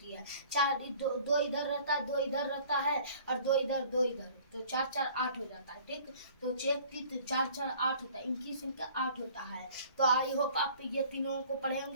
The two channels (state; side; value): inverted; both; correlation -0.51